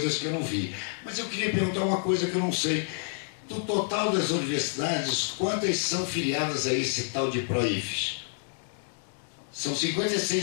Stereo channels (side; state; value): right; silent; digital silence